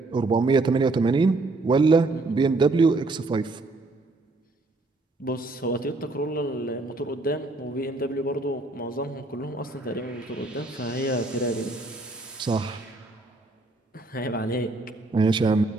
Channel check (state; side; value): quieter; left; 3.2 dB